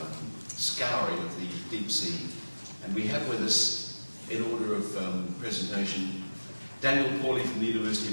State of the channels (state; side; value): inverted; both; correlation -1.00